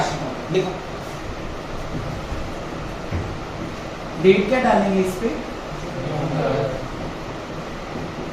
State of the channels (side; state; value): both; identical; correlation 1.00